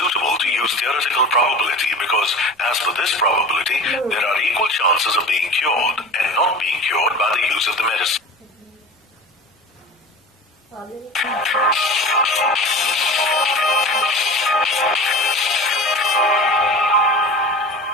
to use theoretical probability because, as for this probability, there are equal chances of being cured and not being cured by the use of the medicine.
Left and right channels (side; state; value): both; normal; correlation 0.35